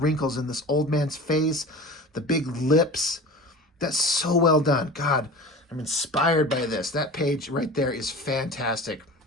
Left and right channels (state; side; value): normal; both; correlation 0.36